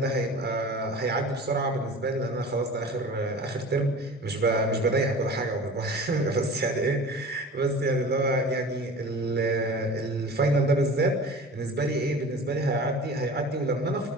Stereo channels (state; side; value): normal; both; correlation 0.39